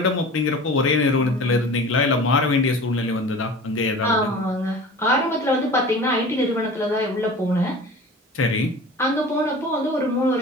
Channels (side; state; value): both; normal; correlation 0.39